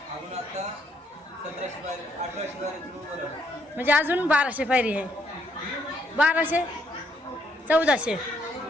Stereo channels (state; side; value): normal; both; correlation 0.72